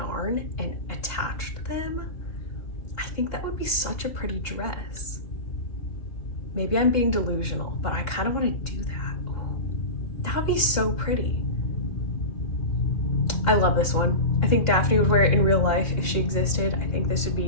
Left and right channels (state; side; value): late; right; 2.8 ms